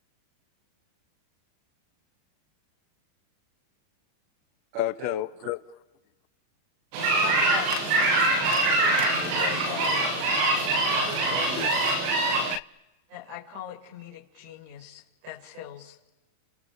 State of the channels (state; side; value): late; left; 39 ms